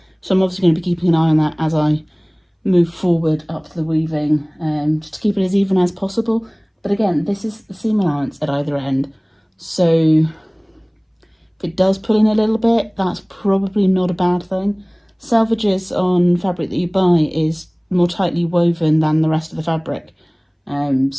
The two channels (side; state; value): both; identical; correlation 1.00